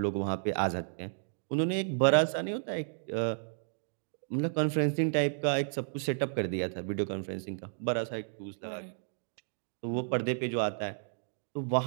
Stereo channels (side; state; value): left; silent; digital silence